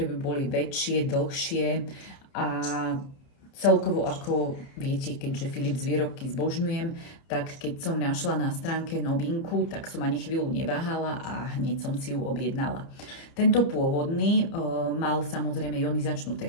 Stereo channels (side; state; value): right; late; 30 ms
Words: by boli väčšie, dlhšie a celkovo, ako viete, keďže Philips výrobky zbožňujem, tak keď som našla na stránke novinku, tak som ani chvíľu neváhala a hneď som si ju objednala. Tento pôvodný mal samozrejme ionizačnú